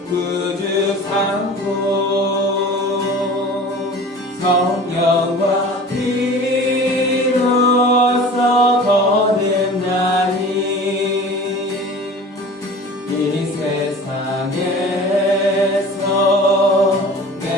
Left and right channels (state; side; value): normal; both; correlation 0.40